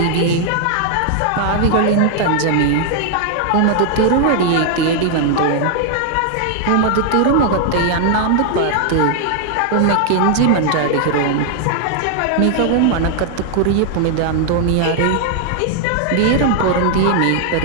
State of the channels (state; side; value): different; both; correlation 0.00